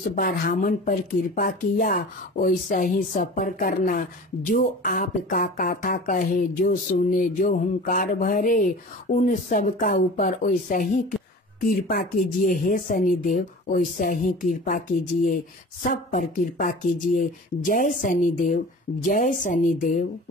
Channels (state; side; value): normal; both; correlation 0.39